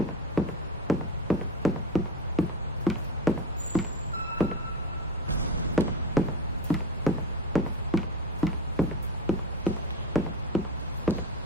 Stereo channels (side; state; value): both; normal; correlation 0.24